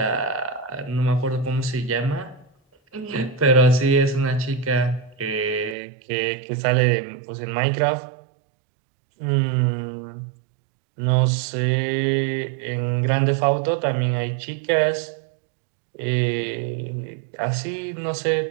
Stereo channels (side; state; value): left; drops out; at 5.8 s